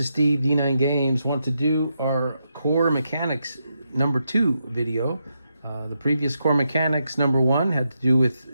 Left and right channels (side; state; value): both; inverted; correlation -0.84